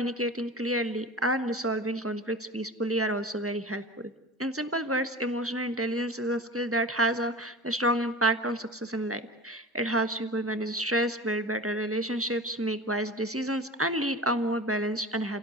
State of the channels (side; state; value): both; normal; correlation 0.34